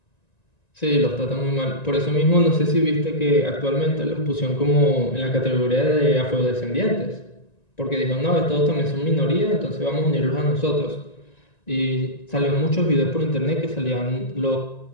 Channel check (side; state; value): right; late; 1.9 ms